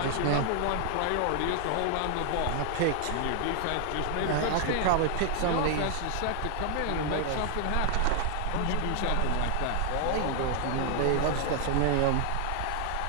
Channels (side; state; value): both; different; correlation 0.00